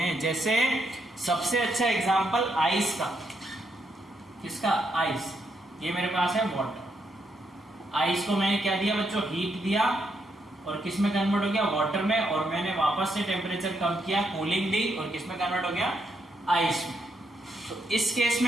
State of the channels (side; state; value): both; normal; correlation 0.77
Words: जैसे सबसे अच्छा एग्जांपल आइस का, किसका, आइस। ये मेरे पास है वाटर, आइस को मैंने क्या दिया बच्चों, हीट दिया, और किस में कन्वर्ट हो गया, वाटर में, और मैंने वापस से टेम्परेचर कम किया, कूलिंग दी, और किस में कन्वर्ट हो गया, आइस में। तो इस केस